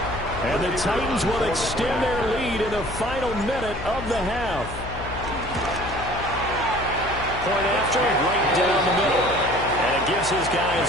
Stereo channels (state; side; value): noise; left; hum, 10 dB below the sound